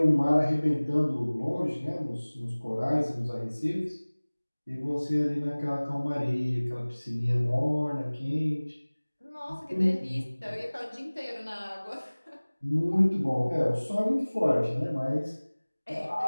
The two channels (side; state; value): both; inverted; correlation -1.00